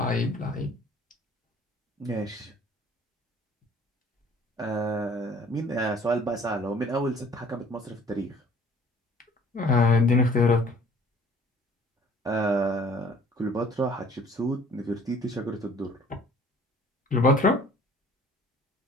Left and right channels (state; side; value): normal; both; correlation 0.53